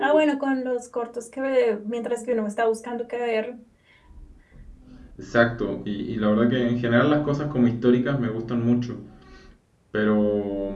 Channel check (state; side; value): identical; both; correlation 1.00